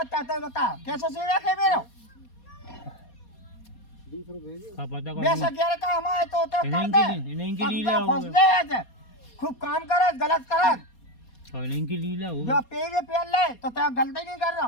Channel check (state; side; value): late; right; 4.2 ms